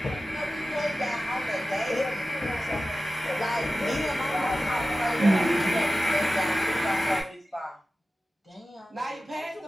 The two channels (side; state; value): both; normal; correlation 0.95